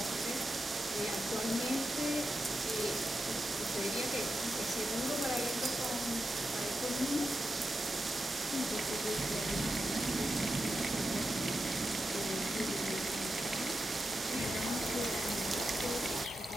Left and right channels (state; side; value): normal; both; correlation 0.88